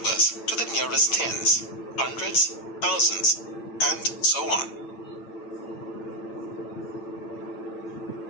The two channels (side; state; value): right; late; 8.9 ms